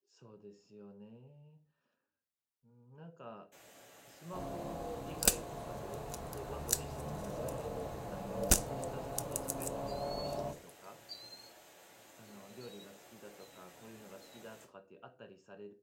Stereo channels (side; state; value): both; identical; correlation 1.00